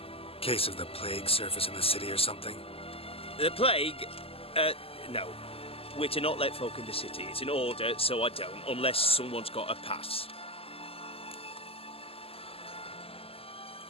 Case of the plague surface in the city or something? The plague? No. We're to not let folk in the city. It's an order, so I don't, unless someone's got a pass.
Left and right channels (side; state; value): right; late; 0.28 ms